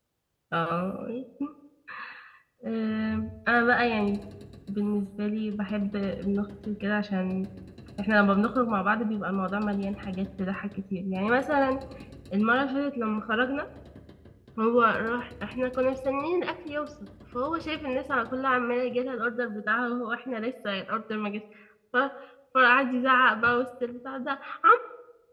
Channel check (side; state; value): both; identical; correlation 1.00